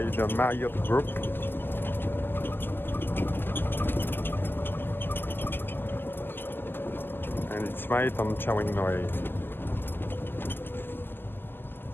the Marriott Group. And it's right on Chaweng Noi.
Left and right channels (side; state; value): right; late; 0.098 ms